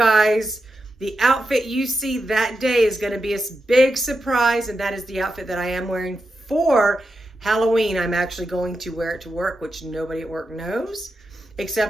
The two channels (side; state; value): both; normal; correlation 0.88